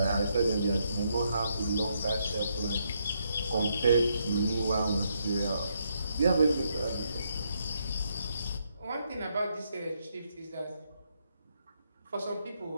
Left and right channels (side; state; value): both; inverted; correlation -0.77